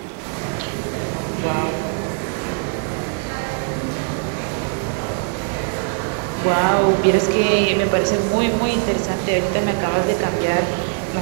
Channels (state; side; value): quieter; left; 37.7 dB